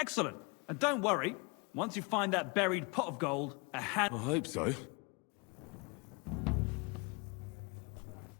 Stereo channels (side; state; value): right; quieter; 29.9 dB